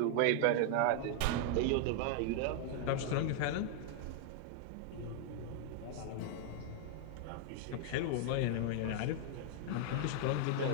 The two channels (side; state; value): both; different; correlation 0.00